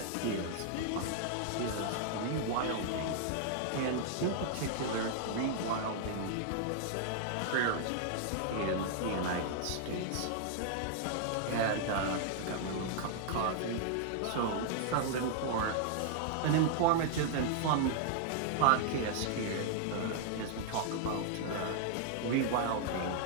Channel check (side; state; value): both; different; correlation -0.01